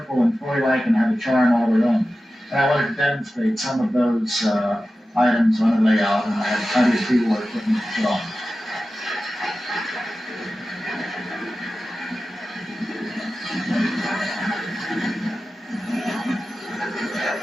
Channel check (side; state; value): both; normal; correlation 0.94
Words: and toy-like and have a charm all their own. And I wanted to demonstrate some of those items on the layout, and I had plenty of pre-war equipment to put on.